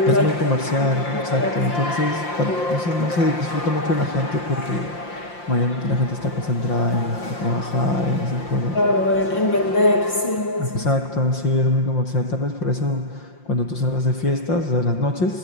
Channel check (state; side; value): late; right; 5.7 ms